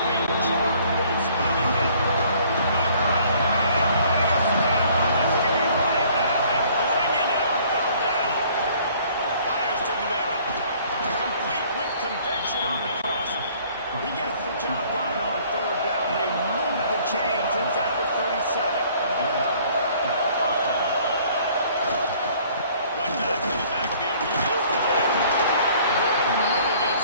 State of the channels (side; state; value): both; inverted; correlation -0.57